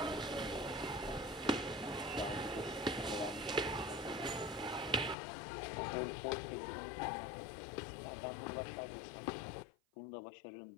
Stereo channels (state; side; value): drops out; right; at 5.2 s